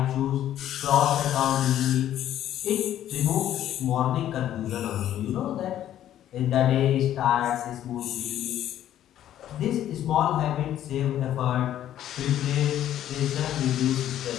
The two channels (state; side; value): quieter; right; 11.7 dB